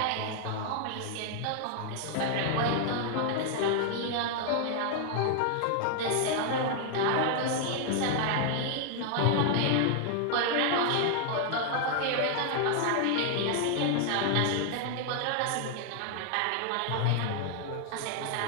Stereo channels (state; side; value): different; both; correlation 0.00